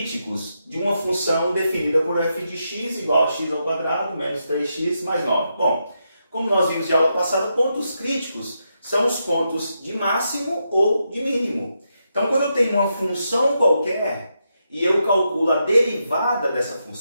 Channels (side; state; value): both; inverted; correlation -0.83